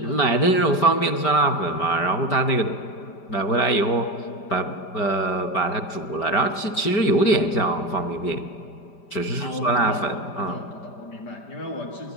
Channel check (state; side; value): late; right; 5.1 ms